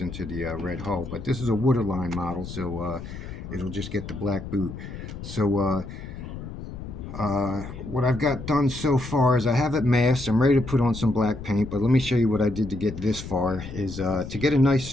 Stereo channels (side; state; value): left; noise; rumble, 10 dB below the sound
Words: into the red hull. But this is a waterline model, so it'll just get the black boot. So what I've got done so far is I have it masked. I'm ready to put on some black paint, but let me show you what I did to get this far. Is to get a nice